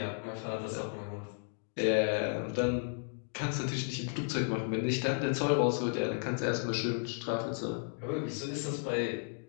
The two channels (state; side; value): silent; right; 55 dB below the other